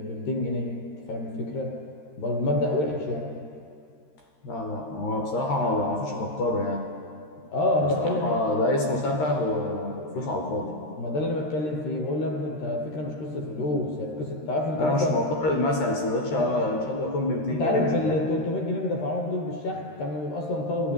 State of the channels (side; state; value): right; late; 13 ms